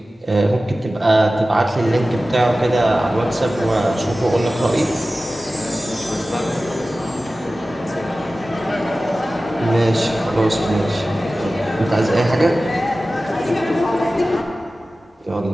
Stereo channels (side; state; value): both; normal; correlation 0.96